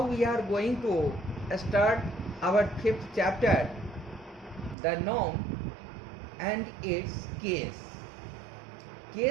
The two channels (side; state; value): left; drops out; at 4.8 s